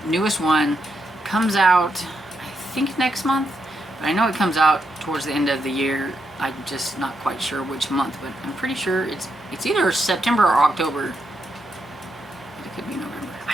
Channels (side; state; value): both; normal; correlation 0.82